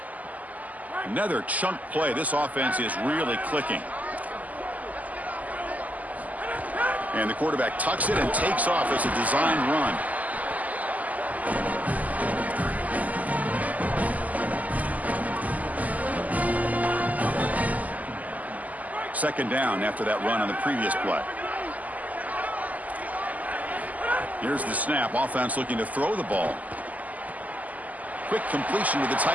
Another chunk play. This offense is really clicking. And the quarterback tucks it and takes off as a design run. Second down after that run on the previous play. Here's the snap. Offense looking to throw the ball. Quick completion to the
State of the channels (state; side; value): late; left; 0.077 ms